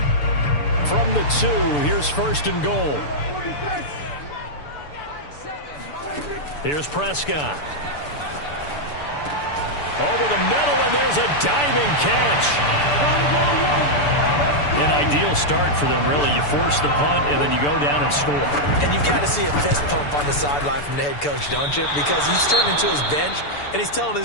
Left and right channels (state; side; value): late; right; 6.9 ms